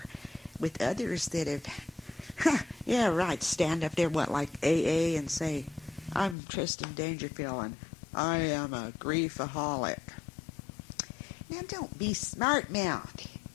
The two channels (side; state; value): right; drops out; at 6.4 s